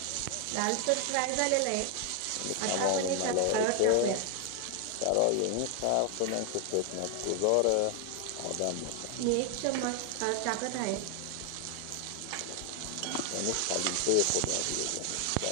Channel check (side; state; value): both; different; correlation 0.00